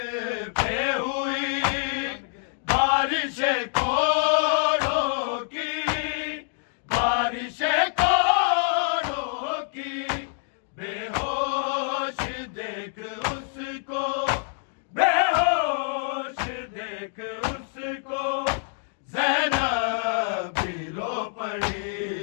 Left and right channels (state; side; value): silent; right; 61 dB below the other